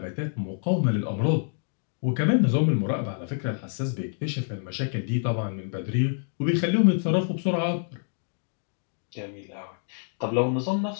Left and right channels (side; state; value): right; silent; digital silence